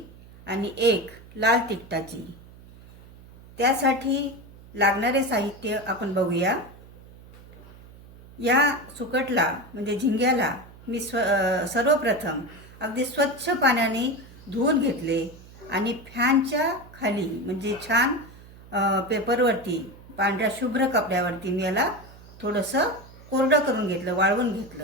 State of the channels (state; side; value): noise; right; hum, 21 dB below the sound